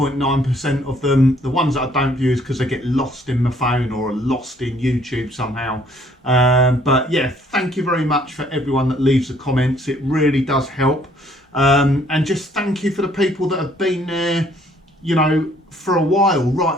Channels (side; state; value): both; normal; correlation 0.63